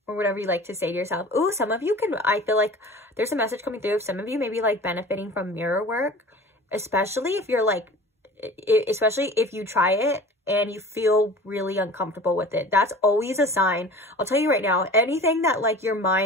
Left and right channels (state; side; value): normal; both; correlation 0.41